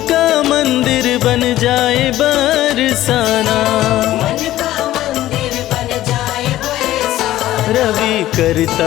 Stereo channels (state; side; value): quieter; right; 14.5 dB